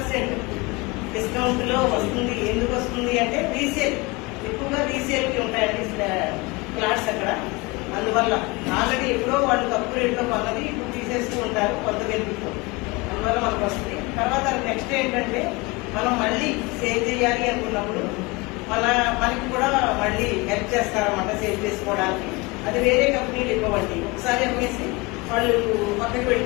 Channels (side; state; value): right; quieter; 24.7 dB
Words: డిస్కౌంట్ లో వస్తుంది. ఎందుకు వస్తుంది అంటే రీసేల్, ఎక్కువగా రీసేల్ కి ఉంటాయండి ఫ్లాట్స్ అక్కడ. అందువల్ల ఆల్రెడీ ఎప్పుడో వాళ్ళు తక్కువ రేట్లో కొన్నది ఇప్పుడు తీసేస్తూ ఉంటారు కొంత బెనిఫిట్, అందువల్ల మనకు వస్తుంది. తర్వాత నెక్స్ట్ ఏంటంటే మనం మళ్ళీ సేవ్ చేయాలి అనుకున్నప్పుడు మనకి కూడా మళ్ళీ హెల్ప్ చేస్తారన్నమాట సేవ్ చేసుకోవడానికి. అది వేరే కంపెనీలు ఇవ్వండి, ఒకసారి అమ్మేసి వాళ్ళు పక్కకి